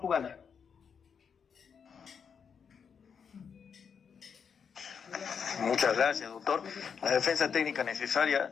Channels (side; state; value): right; quieter; 6.7 dB